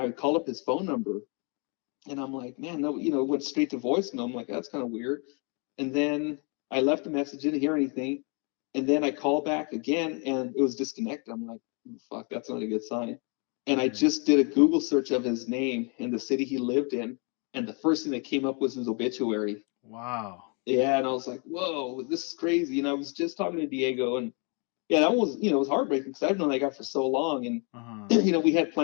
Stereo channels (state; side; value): quieter; right; 35.2 dB